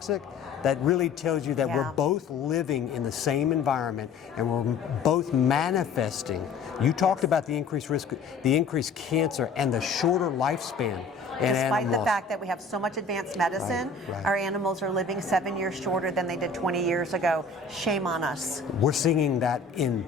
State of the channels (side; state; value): right; quieter; 4.7 dB